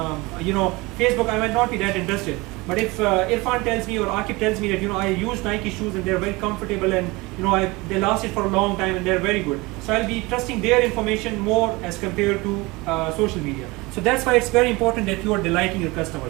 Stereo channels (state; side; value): quieter; left; 23.5 dB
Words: Facebook, I might not be that interested. But if Irfan tells me or Akib tells me that I use Nike shoes and they're very comfortable and they lasted for a long time and they're very good, so I'll be trusting their information more as compared to social media. So that's why it's very important that you are delighting your